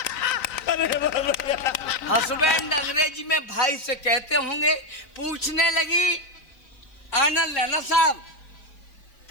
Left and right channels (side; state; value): right; late; 3.9 ms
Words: हस्बैंड अंग्रेजी में भाई से कहते होंगे। पूछने लगी, नैना साहब